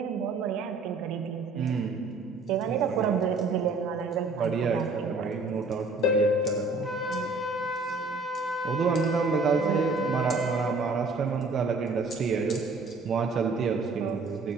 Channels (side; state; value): left; quieter; 3.6 dB